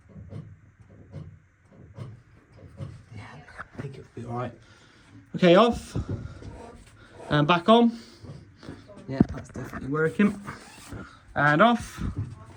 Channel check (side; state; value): both; identical; correlation 1.00